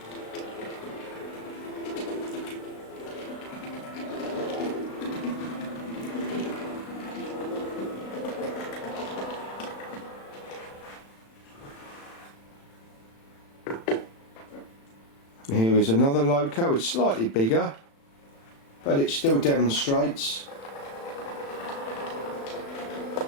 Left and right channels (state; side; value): late; right; 36 ms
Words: Here is another loco. It's slightly bigger, but it still demonstrates.